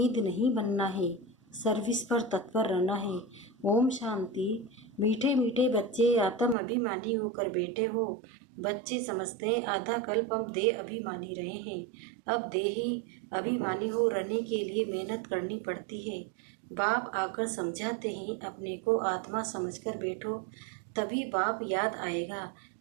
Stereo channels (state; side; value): drops out; left; at 6.6 s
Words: नहीं बनना है, सर्विस पर तत्पर रहना है। ओम शांति। मीठे मीठे बच्चे, आत्म अभिमानी होकर बैठे हो। बच्चे समझते हैं आधा कल्प हम देह अभिमानी रहे हैं, अब देही अभिमानी हो रहने के लिए मेहनत करनी पड़ती है। बाप आकर समझाते हैं, अपने को आत्मा समझकर बैठो, तभी बाप याद आएगा,